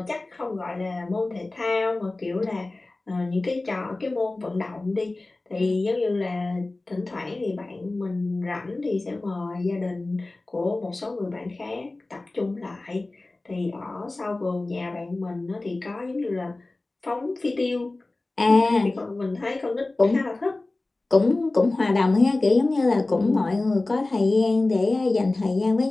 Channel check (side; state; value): right; quieter; 3.0 dB